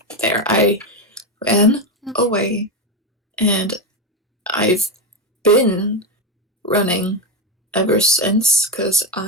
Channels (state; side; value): normal; both; correlation 0.11